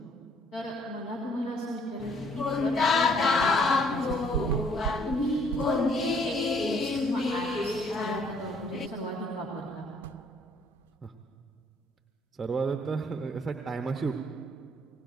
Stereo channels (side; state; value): both; normal; correlation 0.64